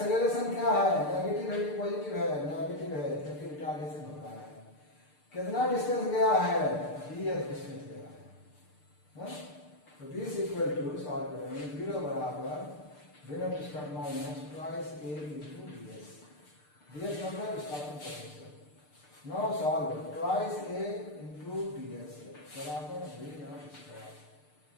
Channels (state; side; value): late; right; 6.7 ms